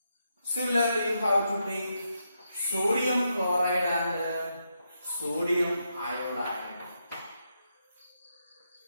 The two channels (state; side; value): inverted; both; correlation -0.83